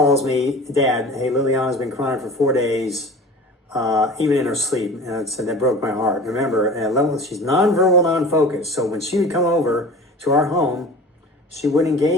me, Dad, hey, Liliana's been crying for 4 days, even in her sleep. And I said, that broke my heart. Remember, at level, she's nonverbal, non-focused. So when she would come over to our home, she wouldn't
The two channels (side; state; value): both; normal; correlation 0.38